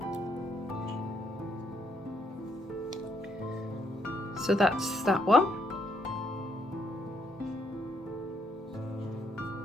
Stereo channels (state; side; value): normal; both; correlation 0.73